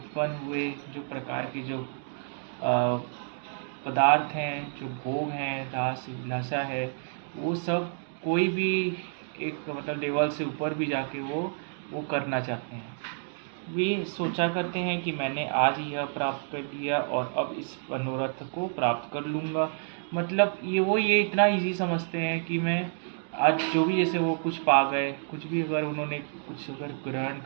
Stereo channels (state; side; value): silent; left; digital silence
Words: हुए जो प्रकार के जो पदार्थ हैं, जो भोग हैं, रास लाशा है, वो सब कोई भी एक लेवल से ऊपर भी जाके वो करना चाहते हैं। वे सोचा करते हैं कि मैंने आज यह प्राप्त कर लिया और अब इस मनोरथ को प्राप्त कर लूँगा। ये इतना इजी समझते हैं कि मैं आज जो भी, जैसे वो कुछ पा गए, कुछ भी अगर उन्होंने कुछ अगर ग्रहण